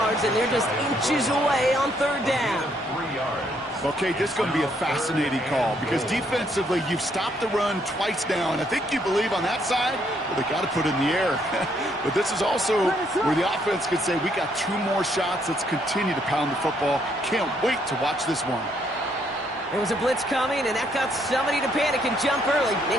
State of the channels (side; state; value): both; normal; correlation 0.71